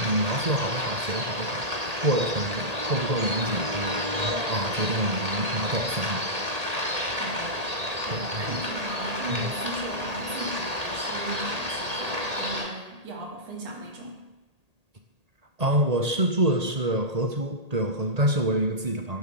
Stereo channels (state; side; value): late; left; 1.8 ms